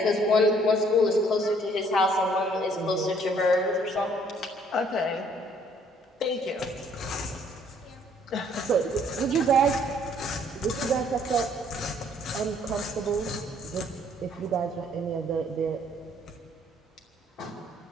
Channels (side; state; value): both; normal; correlation 0.62